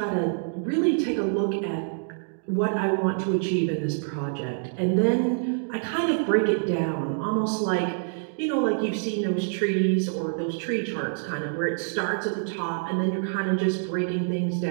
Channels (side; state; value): left; silent; digital silence